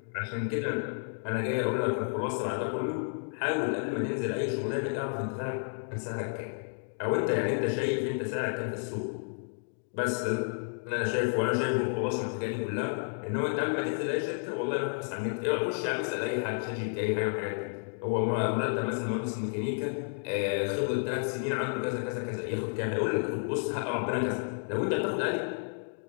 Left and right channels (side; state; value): right; silent; 57 dB below the other